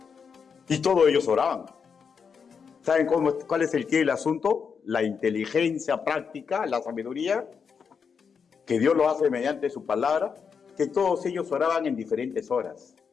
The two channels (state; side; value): quieter; right; 6.2 dB